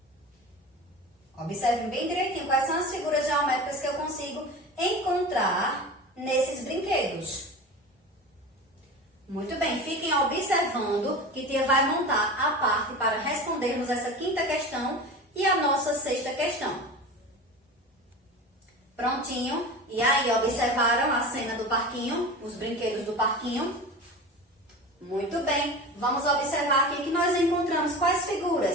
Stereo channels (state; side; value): normal; both; correlation 0.31